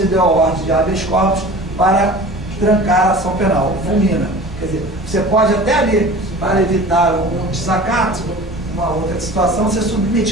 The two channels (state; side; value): normal; both; correlation 0.40